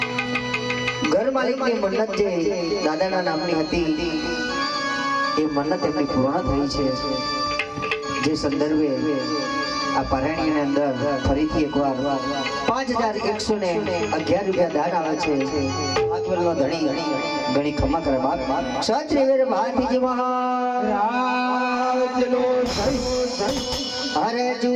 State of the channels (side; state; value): both; identical; correlation 1.00